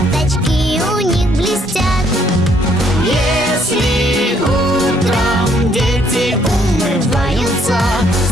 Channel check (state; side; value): normal; both; correlation 0.67